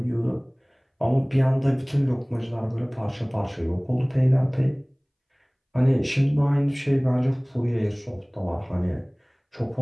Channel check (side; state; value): both; identical; correlation 1.00